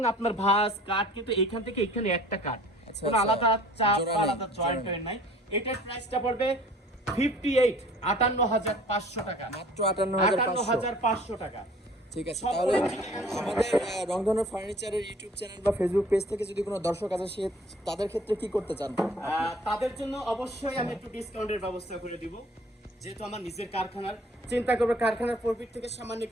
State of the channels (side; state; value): both; normal; correlation 0.50